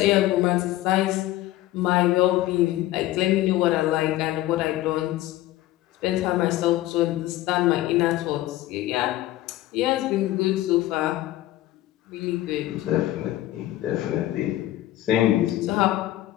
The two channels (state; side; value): quieter; right; 15.5 dB